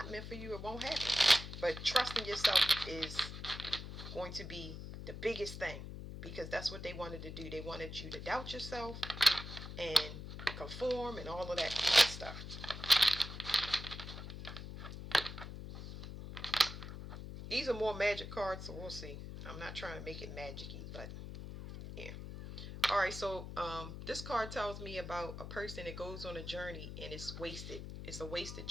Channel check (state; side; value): noise; left; hum, 9 dB below the sound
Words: meant for you, it won't happen. But trusting yourself is going to be the biggest thing, because that's what they wanted to do. They wanted you to doubt yourself and conform and all of that stuff. These are more magic cards, so we'll see. I'm not trying to make it magic-y, but yeah. All right, so this card tells me about a person that goes on a journey and it's wasted. It's a wasted